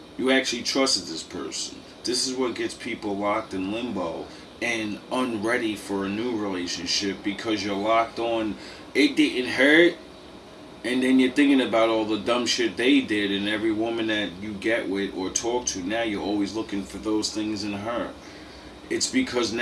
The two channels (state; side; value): identical; both; correlation 1.00